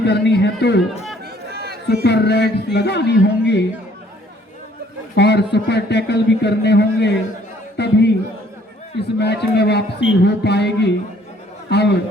है तो सुपर रेड्स लगानी होंगी और सुपर टैकल भी करने होंगे, तभी इस मैच में वापसी हो पाएगी।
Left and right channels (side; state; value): both; normal; correlation 0.60